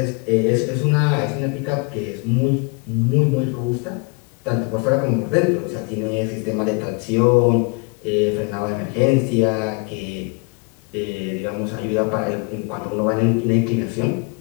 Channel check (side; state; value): right; quieter; 32.2 dB